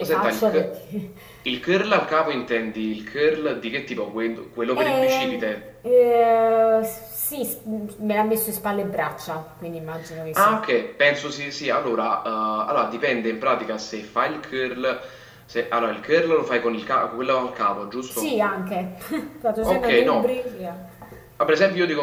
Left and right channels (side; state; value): both; identical; correlation 1.00